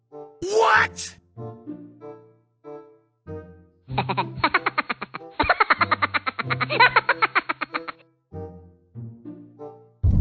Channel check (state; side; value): identical; both; correlation 1.00